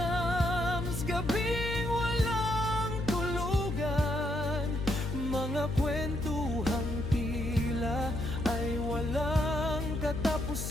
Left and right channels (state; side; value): noise; left; hum, 4 dB below the sound